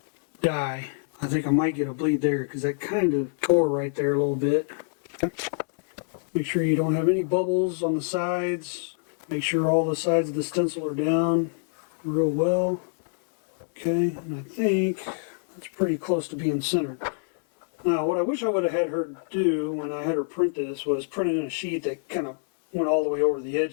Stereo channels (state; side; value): silent; right; digital silence